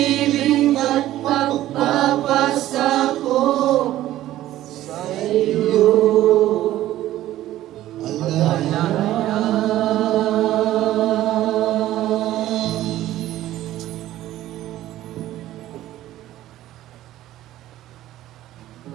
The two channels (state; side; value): quieter; left; 14.2 dB